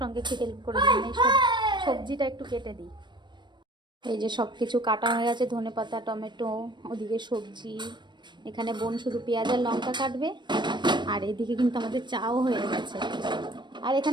একটু হেল্প করে দিই, মানে সবজিটা একটু কেটে দিই। এই যে সব কিছু কাটা হয়ে গেছে, ধনেপাতা, টমেটো, ওদিকে সবজি, এখানে বোন শুধু পেঁয়াজ আর লঙ্কা কাটবে। আর এদিকে কিন্তু আমাদের চাও হয়ে গেছে। আর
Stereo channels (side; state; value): left; late; 0.22 ms